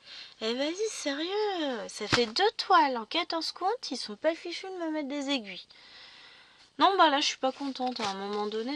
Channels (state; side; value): identical; both; correlation 1.00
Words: Eh vas-y, sérieux, ça fait 2 toiles en 14 comptes, ils sont pas fichus de me mettre des aiguilles. Non, bah là, je suis pas contente. À un moment